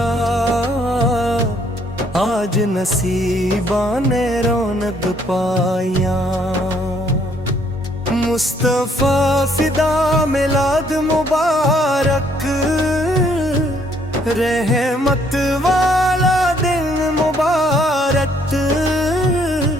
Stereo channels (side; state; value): both; normal; correlation 0.66